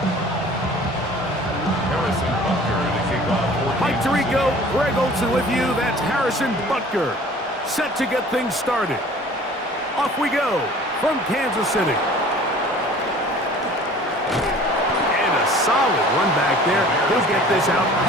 Mike Tirico, Greg Olsen with you. That's Harrison Butker, set to get things started. Off we go from Kansas City. And a solid run back there. He'll get this out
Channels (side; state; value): both; normal; correlation 0.48